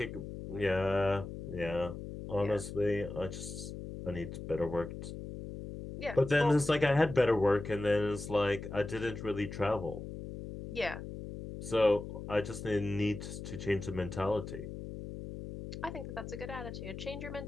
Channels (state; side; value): noise; left; hum, 9 dB below the sound